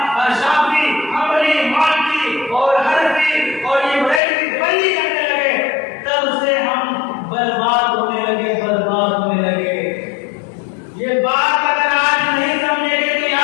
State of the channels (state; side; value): drops out; right; at 4.2 s